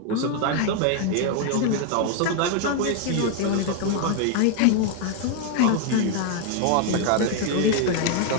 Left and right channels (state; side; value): different; both; correlation 0.01